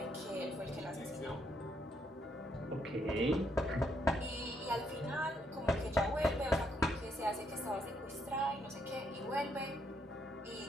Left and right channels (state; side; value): normal; both; correlation 0.74